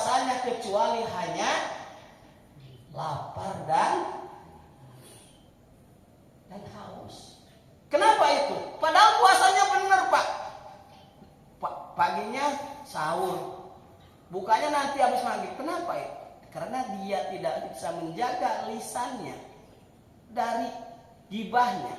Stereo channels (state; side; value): identical; both; correlation 1.00